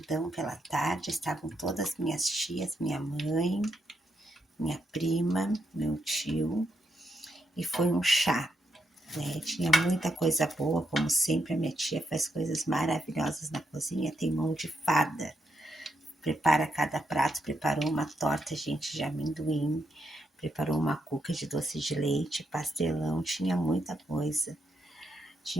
pela tarde. Estavam todas minhas tias, minha mãe, minha prima, meu tio. E foi um chá, né? Tinha muita coisa boa, como sempre a minha tia faz coisas maravilhosas na cozinha, tem mão de fada. Prepara cada prato, preparou uma torta, gente, de amendoim, preparou uma cuca de doce de leite, pastelão, tinha muita coisa.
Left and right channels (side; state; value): both; normal; correlation 0.80